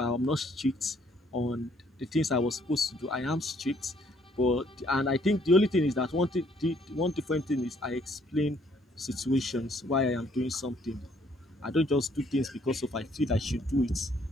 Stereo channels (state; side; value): normal; both; correlation 0.65